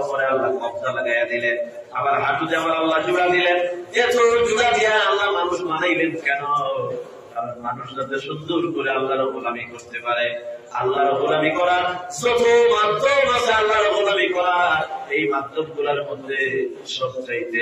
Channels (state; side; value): identical; both; correlation 1.00